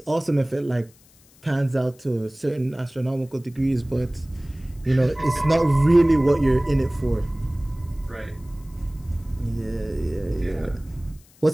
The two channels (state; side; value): noise; left; hiss, 28 dB below the sound